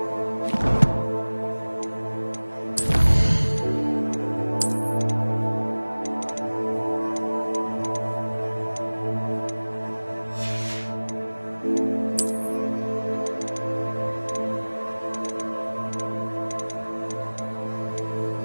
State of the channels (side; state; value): both; inverted; correlation -1.00